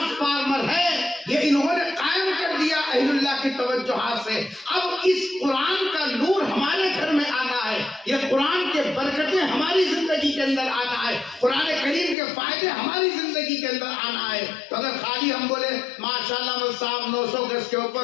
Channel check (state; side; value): drops out; right; at 12.2 s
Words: ہے، یہ انہوں نے قائم کر دیا اہل اللہ کی توجہات سے۔ اب اس قرآن کا نور ہمارے گھر میں آنا ہے، یہ قرآن کے برکتیں ہماری زندگی کے اندر آنا ہے، قرآن کریم کے فائدے ہماری زندگی کے اندر آنا ہے۔ تو اگر خالی ہم بولے ماشاءاللہ مول صاحب 900 گز کے